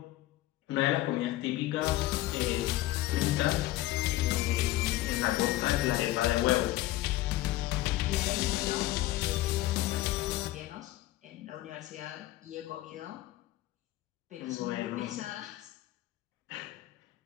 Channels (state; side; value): quieter; right; 16.1 dB